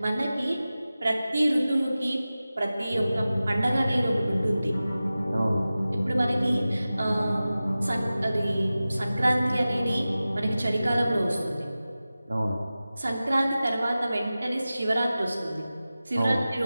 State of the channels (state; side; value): inverted; both; correlation -0.96